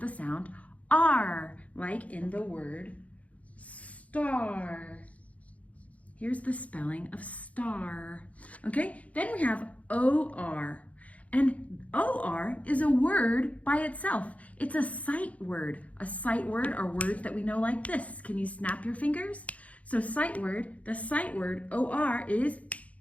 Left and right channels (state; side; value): late; right; 0.067 ms